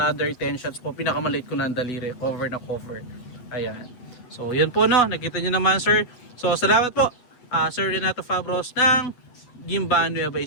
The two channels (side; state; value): right; late; 8.1 ms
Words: 10 shots po, pinakamaliit ko ng daliri, cover na cover. Ayan. So yun po, no, nakita nyo naman sir. So salamat po Sir Renato Fabros ng Gimban, Nueva